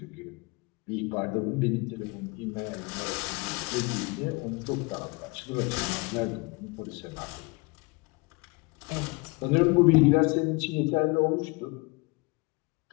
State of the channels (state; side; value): quieter; right; 27.3 dB